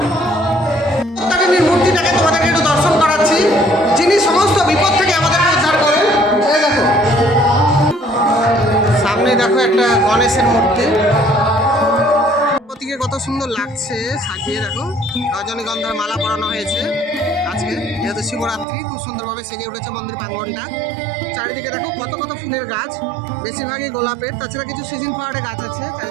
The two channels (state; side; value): drops out; left; at 18.7 s